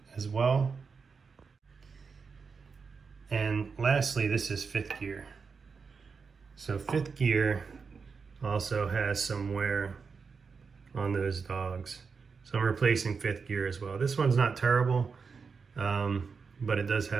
as well. And lastly, this is 5th gear. So 5th gear also has some wear on those dogs. So I'm replacing 5th gear as well. This one's not terrible, but it does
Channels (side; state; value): left; quieter; 5.3 dB